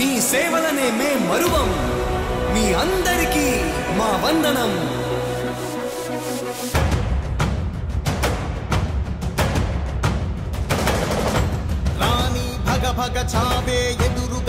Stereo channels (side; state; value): both; identical; correlation 1.00